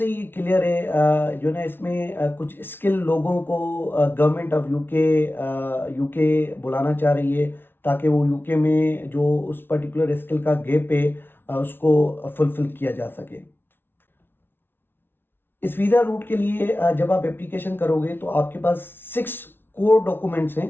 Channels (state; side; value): late; right; 0.11 ms